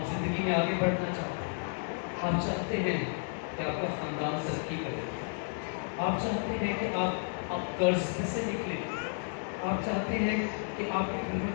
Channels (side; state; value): right; silent; 56 dB below the other